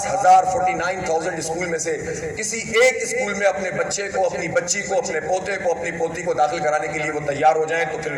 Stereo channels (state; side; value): identical; both; correlation 1.00